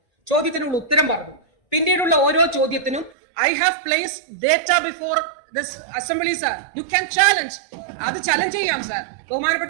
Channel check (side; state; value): left; drops out; at 3.1 s